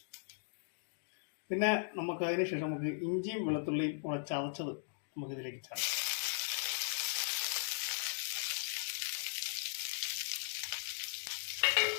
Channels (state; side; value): silent; right; digital silence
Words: പിന്നെ നമുക്ക് അതിനുശേഷം നമുക്ക് ഇഞ്ചിയും വെളുത്തുള്ളിയും കൂടെ ചതച്ചത് നമുക്കിതിലേക്ക് ചേർക്കാം.